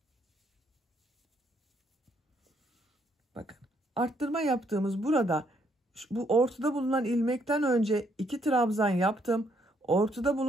Bakın arttırma yaptığımız burada bu ortada bulunan ilmekten önce 2 trabzan yaptım. Ortada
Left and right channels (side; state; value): both; normal; correlation 0.71